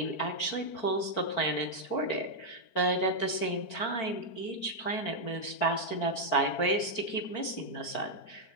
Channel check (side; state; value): right; late; 4.5 ms